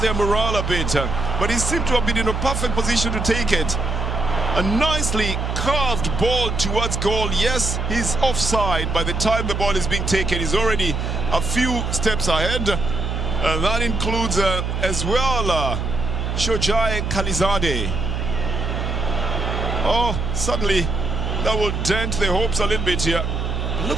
their morale a bit. But he seemed to have been in a perfect position to take it. A nicely curved ball towards goal. Yes, he's offside. By the time the ball is being taken, he's already a few steps ahead. That includes as well Shojai Khalizadeh. Oh, suddenly that will dent their hopes a little bit here. Look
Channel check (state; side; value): noise; right; hum, 2 dB below the sound